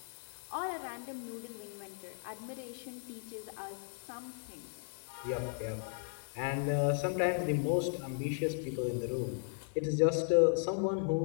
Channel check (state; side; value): silent; right; digital silence